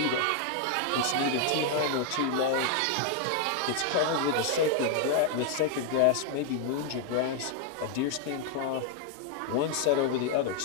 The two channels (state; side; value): different; both; correlation 0.00